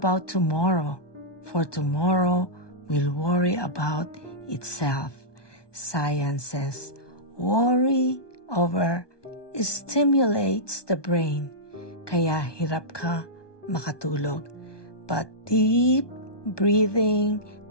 tomorrow, for tomorrow will worry about itself. Science says worry over stimulates the brain, kaya hirap ka makatulog. But deep breathing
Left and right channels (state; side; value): late; right; 1.2 ms